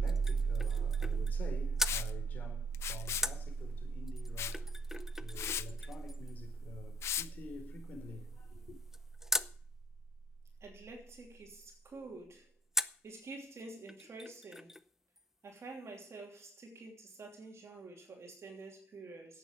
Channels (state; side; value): normal; both; correlation 0.64